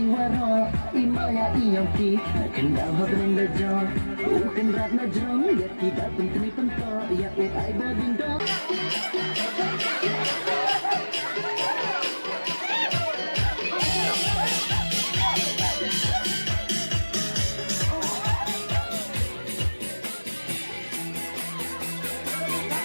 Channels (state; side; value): inverted; both; correlation -1.00